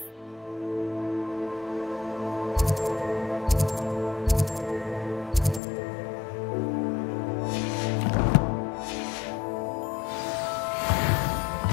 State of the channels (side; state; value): right; drops out; at 5.6 s